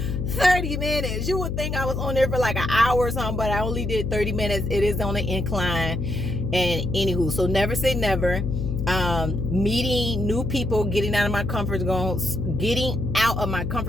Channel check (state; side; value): noise; left; hum, 2 dB below the sound